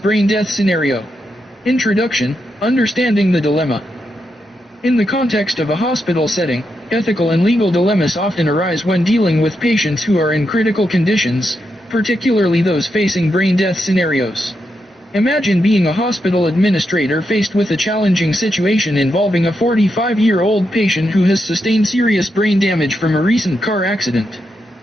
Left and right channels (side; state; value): both; normal; correlation 0.84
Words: death scenario. Introduction: Understanding the dilemma. In the context of a hospital setting, ethical and legal dilemmas often arise when dealing with patients who are in critical conditions, particularly those facing brain death scenarios. Imagine being a hospital administrator faced with a challenging situation involving a 45-year-old patient who has sustained serious brain damage from a recent car accident.